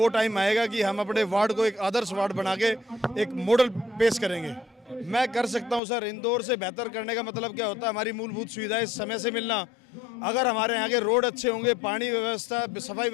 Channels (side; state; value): right; drops out; at 5.8 s